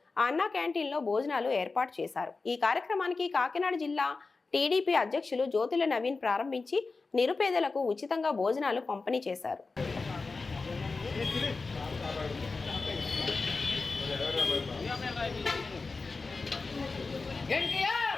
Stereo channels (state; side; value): quieter; right; 4.0 dB